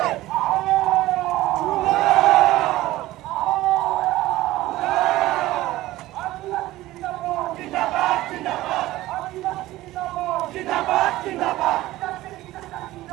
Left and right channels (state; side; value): quieter; left; 16.8 dB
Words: जिंदाबाद, जिंदाबाद, जिंदाबाद, जिंदाबाद।